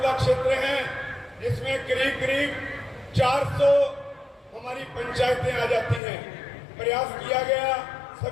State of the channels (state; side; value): drops out; right; at 6.0 s